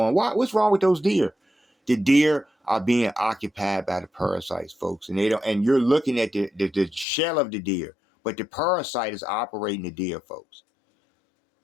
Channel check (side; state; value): right; drops out; at 7.1 s